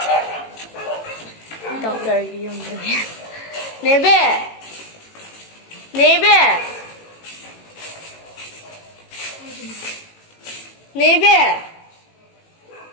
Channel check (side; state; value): right; late; 18 ms